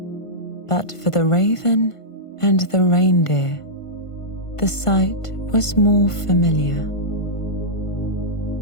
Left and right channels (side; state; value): right; late; 1.5 ms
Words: But for the raven and the reindeer, the sight was more familiar.